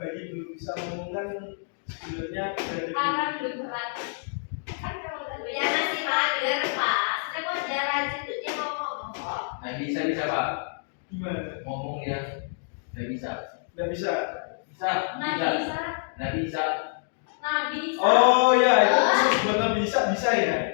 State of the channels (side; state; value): right; silent; digital silence